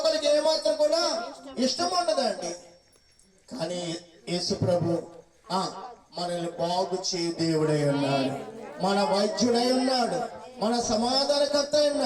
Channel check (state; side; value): identical; both; correlation 1.00